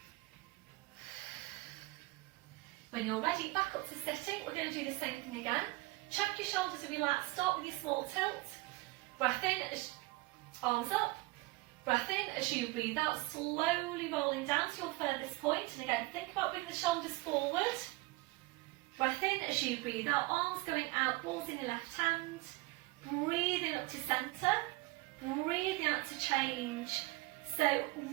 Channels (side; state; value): left; quieter; 21.9 dB